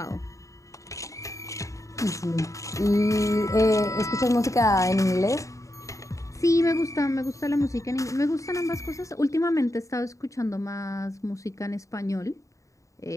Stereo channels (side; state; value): right; late; 0.16 ms